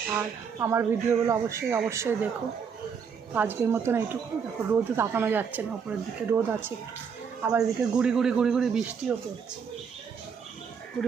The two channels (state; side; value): quieter; left; 6.5 dB